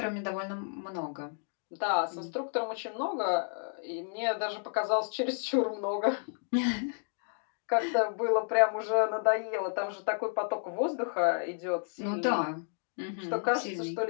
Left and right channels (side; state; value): right; silent; 57 dB below the other